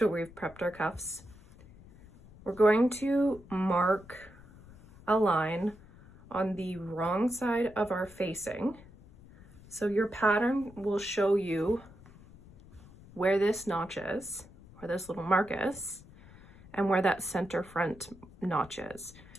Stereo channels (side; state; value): left; noise; rumble, 22 dB below the sound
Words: we've prepped our cuffs, we're going to mark a line on the wrong side of our facing. So your pattern will show you where this notch is, where this little mark is, and where that center front notch is.